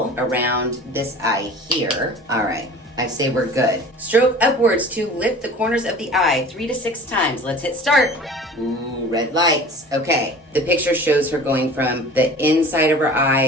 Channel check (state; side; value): normal; both; correlation 0.42